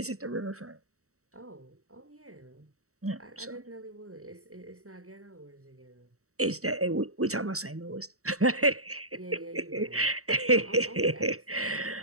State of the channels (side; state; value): left; late; 0.65 ms